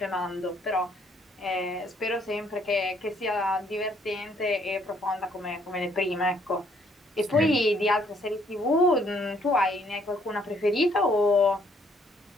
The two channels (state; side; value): normal; both; correlation 0.67